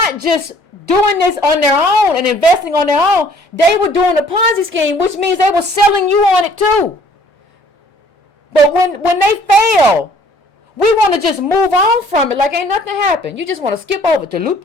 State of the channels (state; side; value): normal; both; correlation 0.57